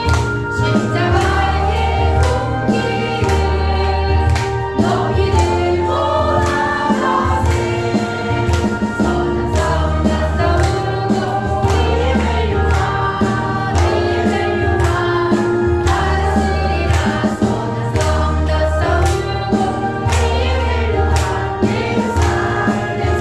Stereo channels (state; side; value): noise; right; rumble, 21 dB below the sound